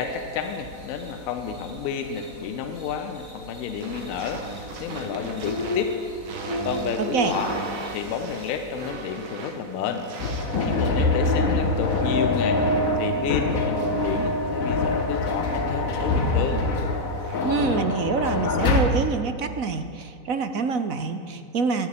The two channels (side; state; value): left; late; 4.0 ms